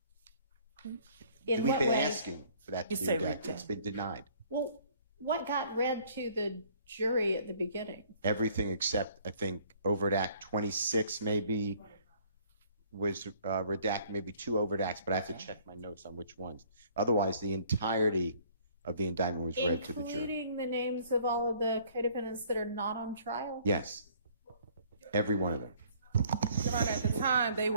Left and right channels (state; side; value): inverted; both; correlation -0.59